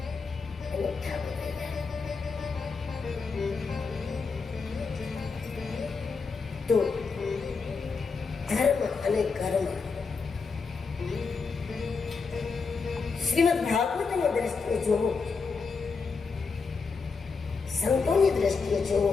એનો ઠાકો થઈ જાય. તો ધર્મ અને કર્મ શ્રીમદ ભાગવતની દ્રષ્ટિએ જોવો, સંતોની દ્રષ્ટિએ જોવો,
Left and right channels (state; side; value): quieter; right; 4.9 dB